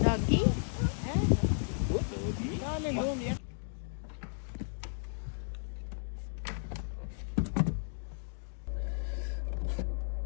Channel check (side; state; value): right; silent; digital silence